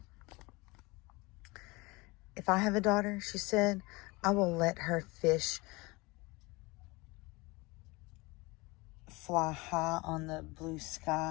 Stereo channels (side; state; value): right; quieter; 24.3 dB